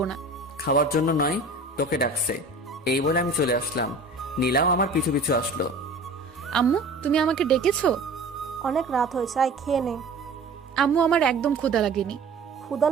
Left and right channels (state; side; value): quieter; left; 3.0 dB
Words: না। খাওয়ার জন্য নয়, তোকে ডাকছে। এই বলে আমি চলে আসলাম। নীলাও আমার পিছু পিছু আসলো। আম্মু, তুমি আমাকে ডেকেছো? অনেক রাত হয়েছে, আয় খেয়ে নে। আম্মু, আমার একদম ক্ষুধা লাগেনি। ক্ষুধা